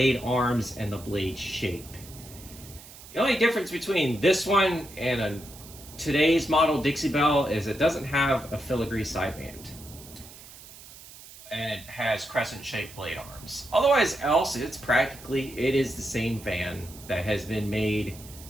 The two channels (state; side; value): noise; right; hiss, 18 dB below the sound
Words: arms and the blade shape. The only difference between this one and today's model Dixie Belle is it doesn't have a filigree sideband, and it has crescent-shaped blade arms. Otherwise else, it is the same fan that has been made